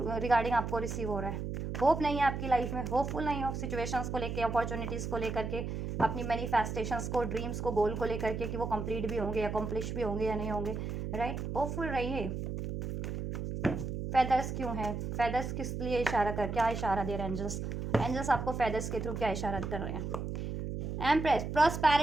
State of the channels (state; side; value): noise; right; hum, 4 dB below the sound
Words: रिगार्डिंग आपको रिसीव हो रहा है, होप नहीं है आपकी लाइफ में, होपफुल नहीं हो सिचुएशंस को लेके, अपॉर्चुनिटीज़ को लेकर के, अपनी मैनिफेस्टेशंस को, ड्रीम्स को, गोल को लेकर के, कि वो कंप्लीट भी होंगे, अकम्प्लिश भी होंगे या नहीं होंगे, राइट। होपफुल रहिए। फेदर्स क्यों है, फेदर्स किस लिए इशारा कर, क्या इशारा दे रहे हैं एंजल्स, एंजल्स आपको फेदर्स के थ्रू क्या इशारा कर रहे हैं। एम्प्रेस,